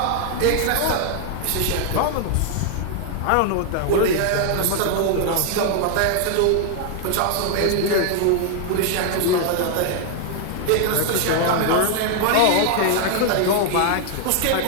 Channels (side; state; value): both; different; correlation 0.00